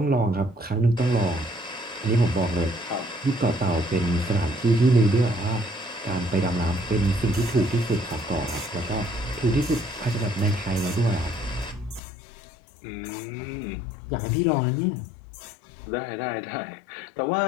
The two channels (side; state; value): right; drops out; at 12.0 s